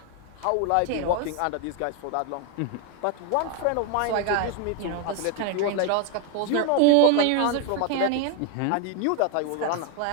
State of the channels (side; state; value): both; different; correlation 0.01